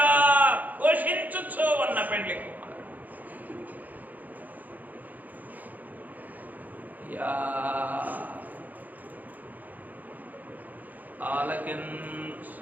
ఘోషించుచు ఉన్న పెండ్లి కుమారుడు. యా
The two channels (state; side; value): late; left; 0.082 ms